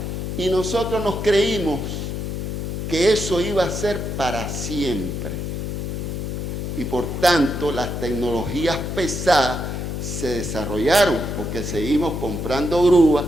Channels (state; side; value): noise; left; hum, 4 dB below the sound